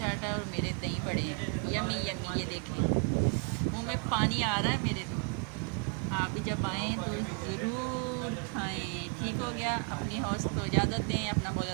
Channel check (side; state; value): left; quieter; 36.0 dB